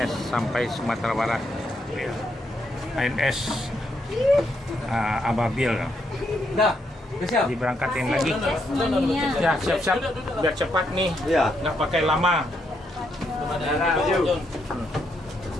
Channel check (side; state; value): both; normal; correlation 0.77